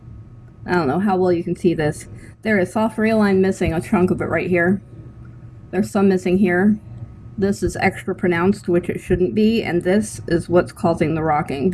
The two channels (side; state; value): both; identical; correlation 1.00